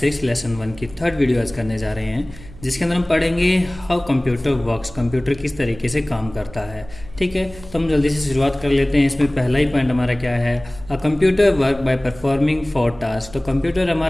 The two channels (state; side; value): noise; right; hum, 18 dB below the sound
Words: लेसन 1 की थर्ड वीडियो आज करने जा रहे हैं, जिसके अंदर हम पढ़ेंगे हाउ कंप्यूटर वर्क्स, कंप्यूटर किस तरीके से काम करता है। ठीक है, तो हम जल्दी से शुरुआत कर लेते हैं। इसमें पहला ही पॉइंट हमारा क्या है, a computer work by performing 4 task. तो कंप्यूटर